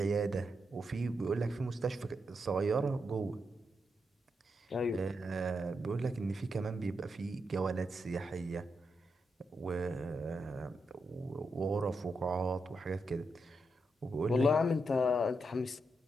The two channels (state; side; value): normal; both; correlation 0.83